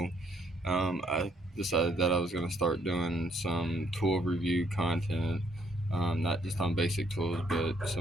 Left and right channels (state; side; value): normal; both; correlation 0.69